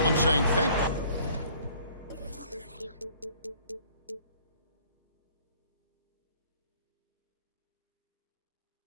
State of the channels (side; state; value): both; inverted; correlation -0.56